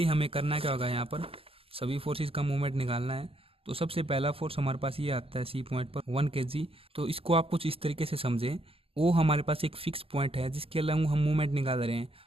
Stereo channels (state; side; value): late; left; 0.27 ms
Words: हमें करना क्या होगा, यहाँ पर सभी फोर्सेस का मूवमेंट निकालना है। तो सबसे पहला फोर्स हमारे पास ये आता है C पॉइंट पर 1 kg। तो इसको आप कुछ इस तरीके से समझें, वो हमारे पास एक फिक्स पॉइंट है जिसके अलावा हम मूवमेंट निकाल रहे हैं।